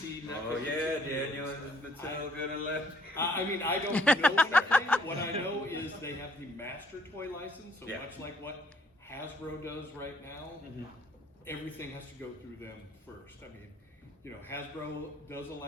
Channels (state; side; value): normal; both; correlation 0.63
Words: Oh yeah, Daniel, is Mattel gonna let? I mean, I don't know anything. What I know is they have the master toy license, so much like what Hasbro does right now, everything has to go through them first. I mean, you know, Hasbro does